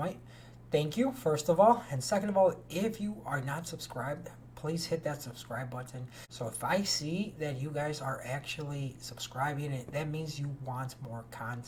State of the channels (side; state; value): both; identical; correlation 1.00